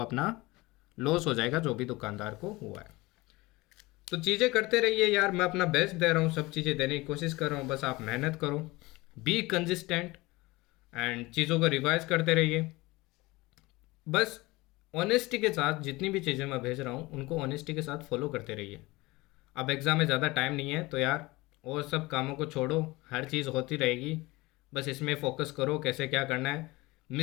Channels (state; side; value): quieter; right; 21.6 dB